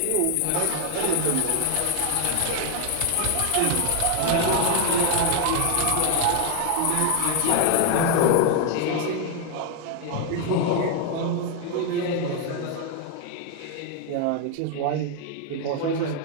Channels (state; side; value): different; both; correlation 0.00